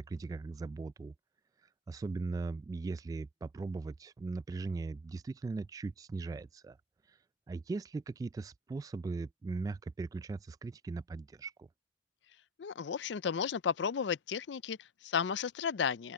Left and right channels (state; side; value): normal; both; correlation 0.26